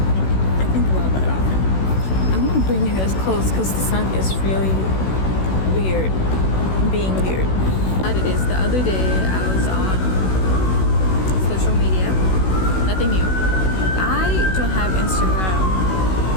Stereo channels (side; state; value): right; late; 16 ms